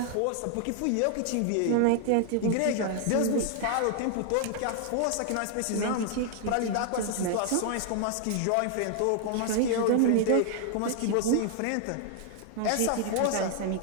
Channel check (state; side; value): different; both; correlation 0.00